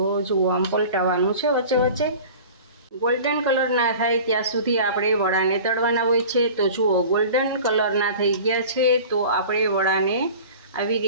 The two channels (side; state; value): both; inverted; correlation -0.40